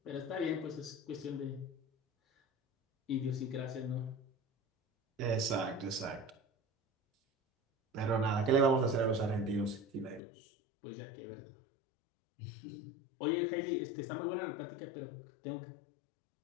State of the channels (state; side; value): drops out; right; at 10.2 s